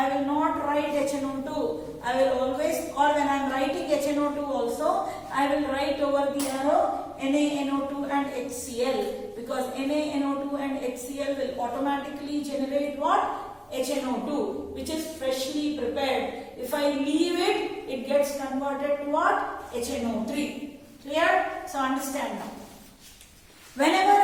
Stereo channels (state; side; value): identical; both; correlation 1.00